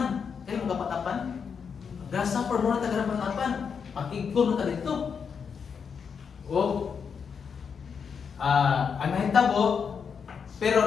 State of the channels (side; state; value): right; quieter; 6.4 dB